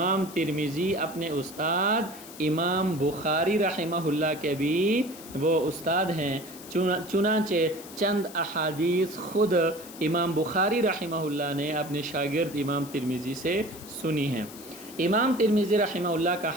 ترمذی اپنے استاد امام بخاری رحمہ اللہ کے بھی وہ استاد ہیں۔ چنانچہ چند احادیث خود امام بخاری رحمہ اللہ نے اپنے شاگرد امام ترمذی سے سنی ہیں۔ امام ترمذی رحمہ اللہ کا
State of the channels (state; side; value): noise; left; hiss, 16 dB below the sound